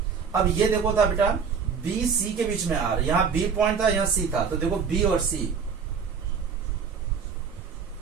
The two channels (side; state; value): left; quieter; 6.2 dB